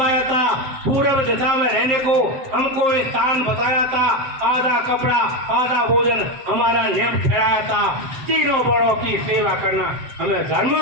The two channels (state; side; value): late; left; 7.6 ms